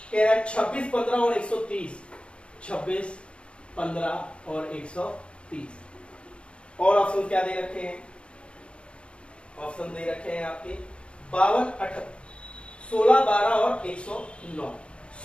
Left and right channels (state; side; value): late; right; 0.058 ms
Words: कह रहा है 26, 15 और 130, 26, 15 और 130। और ऑप्शन क्या दे रखे हैं, ऑप्शन दे रखे हैं आपके 52, 18, 16, 12 और 109,